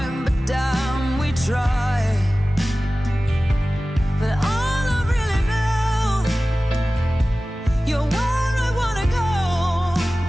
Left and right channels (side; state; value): both; normal; correlation 0.96